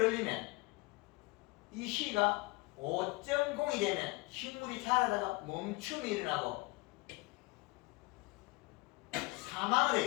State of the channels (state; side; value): quieter; right; 24.4 dB